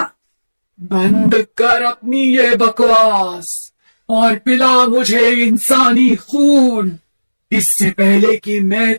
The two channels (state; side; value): inverted; both; correlation -1.00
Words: बंद कर अपनी ये बकवास। और पिला मुझे इंसानी खून, इससे पहले कि मैं